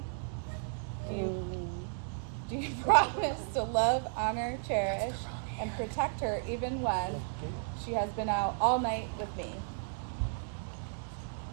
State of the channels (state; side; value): silent; left; digital silence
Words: Do you promise to love, honor, cherish, and protect her even when she has been out all night with me?